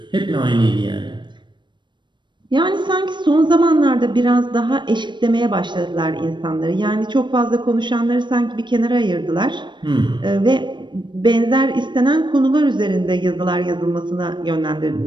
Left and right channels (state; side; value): late; left; 0.22 ms